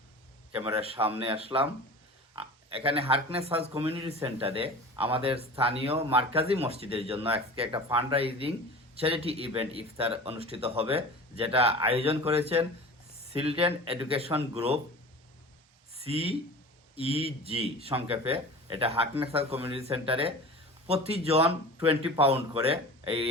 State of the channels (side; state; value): both; normal; correlation 0.37